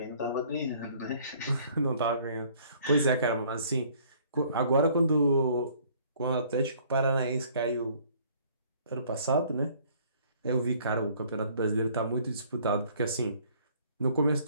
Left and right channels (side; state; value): both; inverted; correlation -0.58